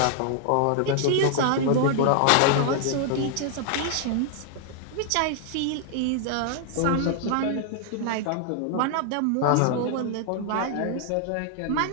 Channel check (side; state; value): both; different; correlation 0.00